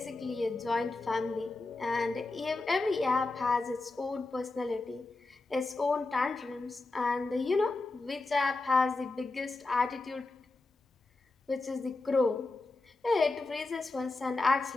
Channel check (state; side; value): quieter; right; 3.3 dB